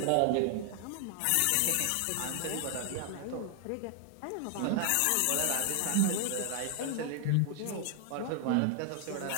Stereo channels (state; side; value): different; both; correlation 0.00